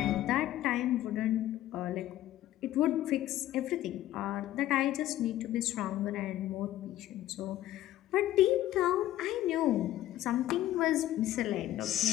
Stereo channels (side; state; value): right; quieter; 13.9 dB